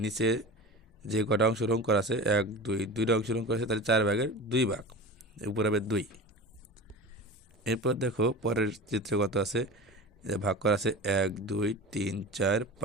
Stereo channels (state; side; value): normal; both; correlation 0.33